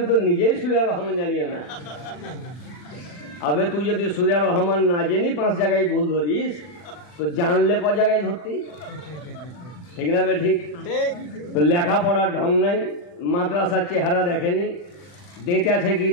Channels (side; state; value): right; late; 40 ms